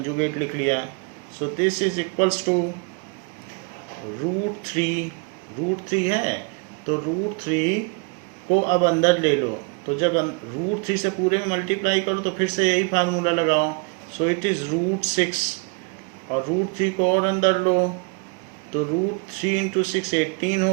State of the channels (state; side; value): quieter; left; 33.7 dB